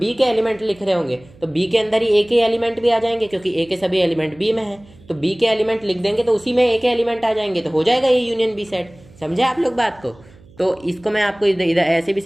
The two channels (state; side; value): noise; right; hum, 25 dB below the sound